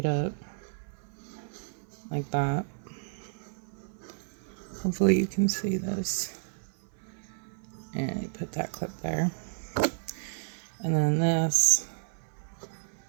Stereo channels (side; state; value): left; silent; 57 dB below the other